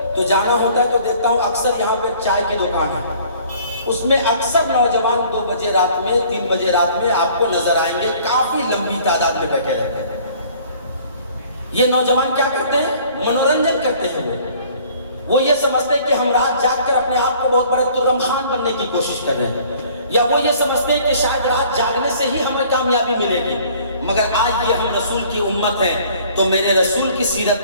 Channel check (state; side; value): inverted; both; correlation -0.54